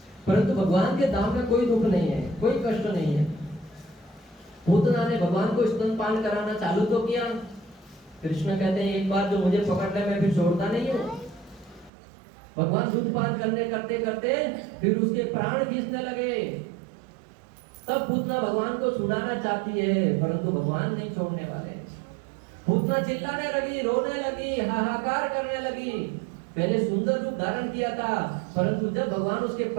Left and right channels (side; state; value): left; drops out; at 11.9 s